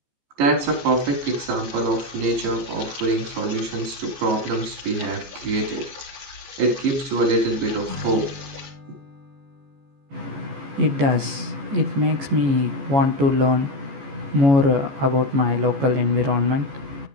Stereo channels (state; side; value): late; left; 14 ms